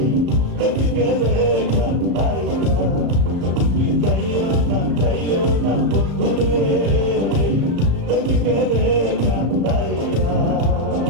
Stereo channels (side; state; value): left; late; 34 ms